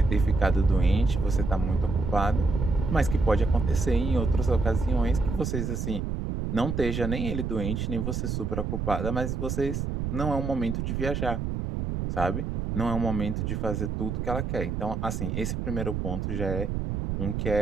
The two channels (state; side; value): noise; right; rumble, 2 dB below the sound